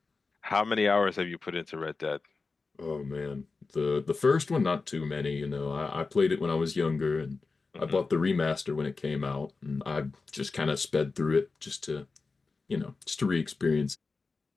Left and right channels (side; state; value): right; quieter; 4.1 dB